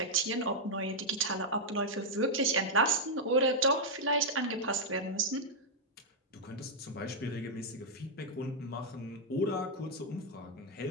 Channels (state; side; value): normal; both; correlation -0.04